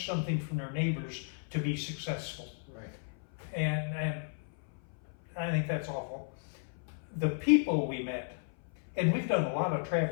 something from their neighbors to be successful. Right. And I think that's awful. The people we met, and we've done a lot of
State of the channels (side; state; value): right; silent; 55 dB below the other